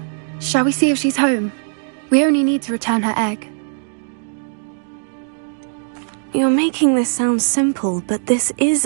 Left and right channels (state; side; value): silent; left; digital silence